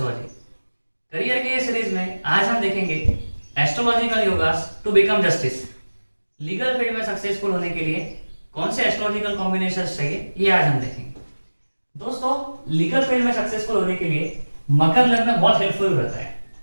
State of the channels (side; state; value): both; inverted; correlation -1.00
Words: Career के series में आज हम देखेंगे astrological yogas to become justice. Legal field में सक्सेसफुल होने के लिए कौन से एस्ट्रोलॉजिकल कॉम्बिनेशन चाहिए ये आज हम देखेंगे। दोस्तों, लीगल फील्ड में सक्सेसफुल होने के लिए मकर लग्न बहुत हेल्पफुल रहता है,